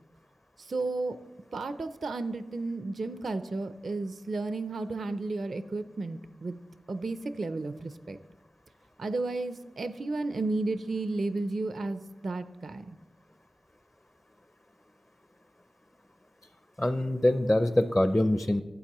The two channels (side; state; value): both; normal; correlation 0.94